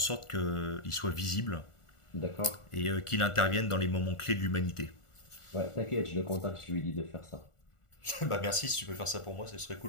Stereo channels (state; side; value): late; right; 1.4 ms